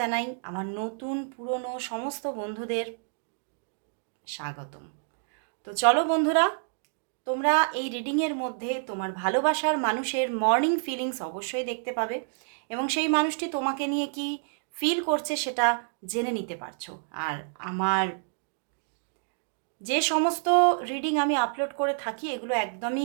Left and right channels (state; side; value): silent; left; digital silence